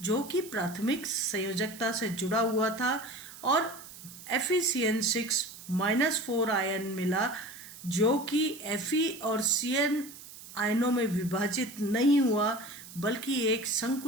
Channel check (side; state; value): right; noise; hiss, 16 dB below the sound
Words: जो कि प्राथमिक संयोजकता से जुड़ा हुआ था, और FeCN6-4 आयन मिला जो कि Fe और Cn आयनों में विभाजित नहीं हुआ बल्कि एक